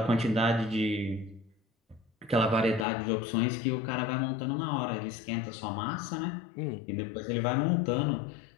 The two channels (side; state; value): right; drops out; at 2.9 s